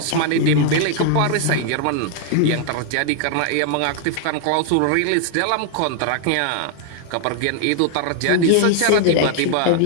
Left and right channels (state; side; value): different; both; correlation 0.00